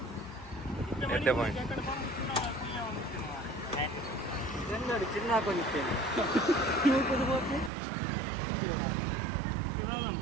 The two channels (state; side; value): drops out; left; at 7.7 s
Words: చిన్న కొనిచ్చాను నువ్వు కుదిపోతే